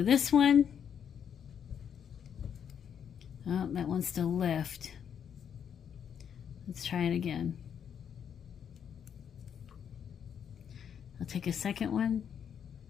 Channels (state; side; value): quieter; right; 8.2 dB